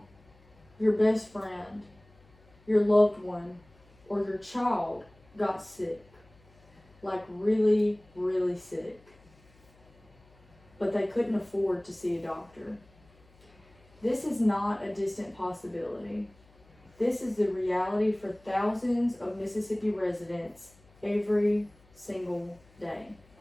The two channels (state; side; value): noise; left; hum, 28 dB below the sound